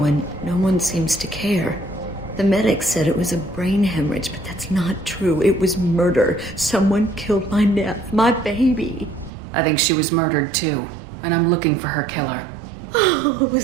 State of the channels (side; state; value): left; drops out; at 9.3 s